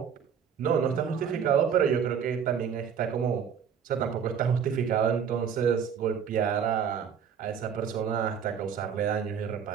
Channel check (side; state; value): left; quieter; 7.5 dB